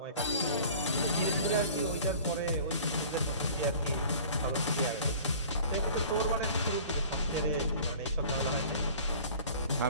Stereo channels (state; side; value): inverted; both; correlation -0.45